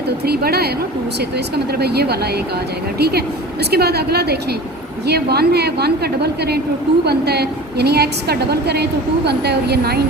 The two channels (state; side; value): normal; both; correlation 0.37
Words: तो 3 बड़ा है ना 2 से, तो इसका मतलब है ये वाला एक आ जाएगा, ठीक है। उसके बाद अगला देखें, ये 1 है, 1 का डबल करें तो 2 बनता है, यानी x का डबल करें तो 2 बनता है, और ये 9